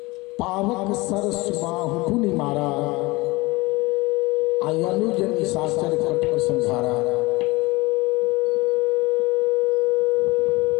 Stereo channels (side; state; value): right; quieter; 22.7 dB